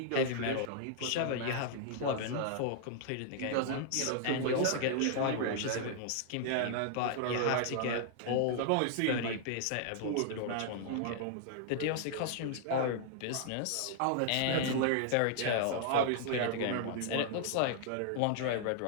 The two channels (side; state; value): both; different; correlation -0.01